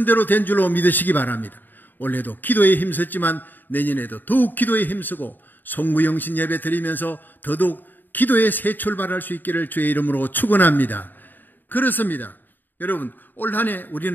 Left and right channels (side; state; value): right; late; 0.090 ms